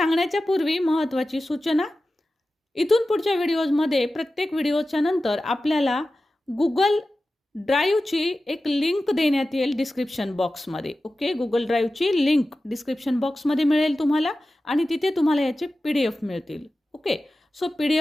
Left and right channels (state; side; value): normal; both; correlation 0.94